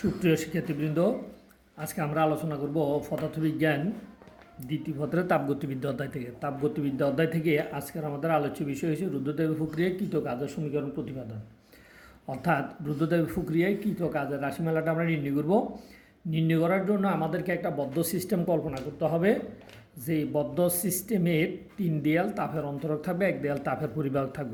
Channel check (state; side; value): identical; both; correlation 1.00